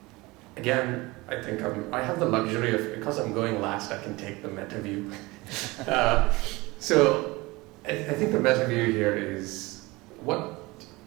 again, I think I have the luxury of, because I'm going last, I can take the meta view. So I think the meta view here is what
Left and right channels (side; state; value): left; quieter; 22.4 dB